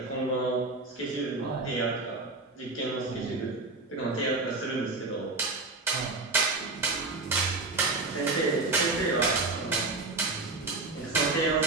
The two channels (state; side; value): quieter; left; 3.4 dB